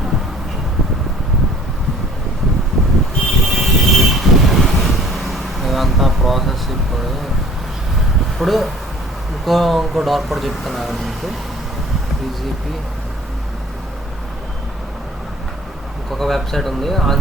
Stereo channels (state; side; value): normal; both; correlation 0.51